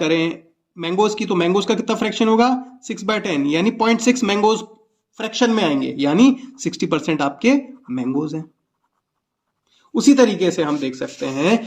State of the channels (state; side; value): identical; both; correlation 1.00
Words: मैंगोज की, तो मैंगोज का कितना फ्रैक्शन होगा 6/10, यानी 0.6 मैंगोज फ्रैक्शन में आएंगे, यानी 60% आपके मैंगोज हैं। उसी तरीके से हम देख सकते